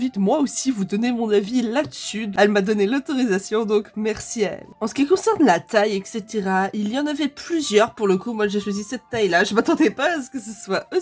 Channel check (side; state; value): both; identical; correlation 1.00